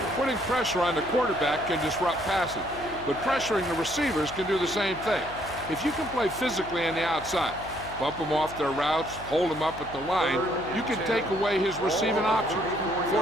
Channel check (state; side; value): noise; left; hum, 14 dB below the sound